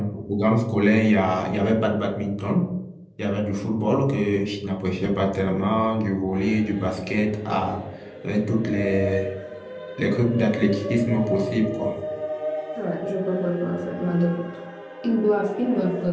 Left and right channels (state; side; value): identical; both; correlation 1.00